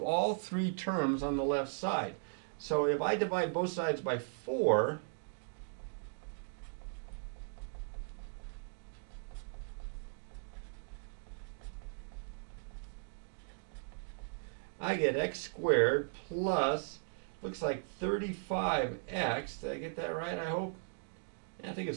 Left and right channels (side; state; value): left; silent; digital silence